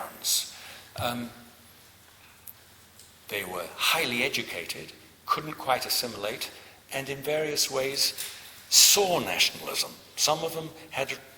They were highly educated, couldn't quite assimilate, and in various ways saw nationalism. Some of them had a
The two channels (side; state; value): both; identical; correlation 1.00